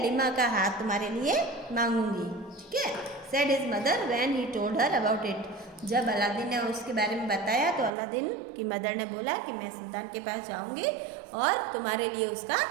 का हाथ तुम्हारे लिए मांगूंगी, ठीक है। Said his mother when he told her about it, जब अलादीन ने उसके बारे में बताया तो अलादीन की मदर ने बोला कि मैं सुल्तान के पास जाऊंगी और तुम्हारे लिए उसका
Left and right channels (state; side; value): drops out; left; at 7.9 s